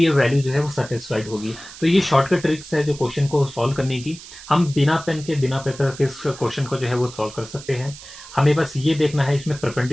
ये वैल्यू जो है वो सेटिस्फाइड होगी। तो ये शॉर्टकट ट्रिक्स है जो क्वेश्चन को सॉल्व करने की। हम बिना पेन के बिना पेपर के इस क्वेश्चन को जो है वो सॉल्व कर सकते हैं। हमें बस ये देखना है इसमें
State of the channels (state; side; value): noise; right; hiss, 16 dB below the sound